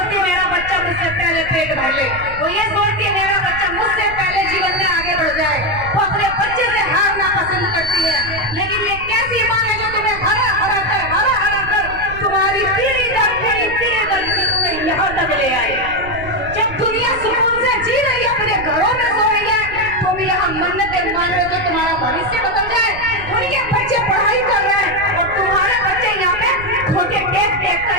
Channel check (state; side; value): noise; right; rumble, 13 dB below the sound